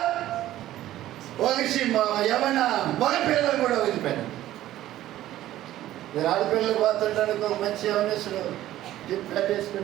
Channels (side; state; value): left; quieter; 13.9 dB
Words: ఒగిసి యవన మగ పిల్లలను కూడా వదిలిపెట్టదు. మీరు ఆడపిల్లలు పోతుంటానికి ఒక మంచి యవనస్తుడు జిప్